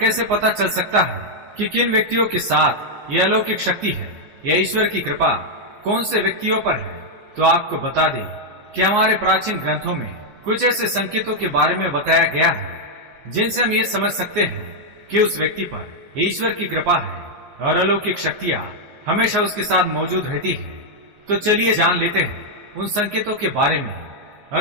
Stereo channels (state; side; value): late; left; 14 ms